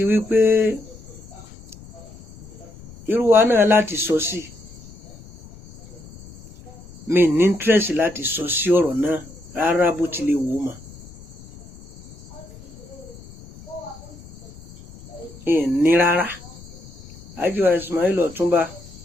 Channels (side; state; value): left; noise; rumble, 19 dB below the sound